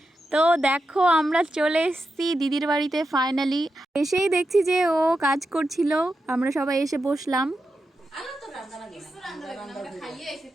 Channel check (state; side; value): normal; both; correlation 0.88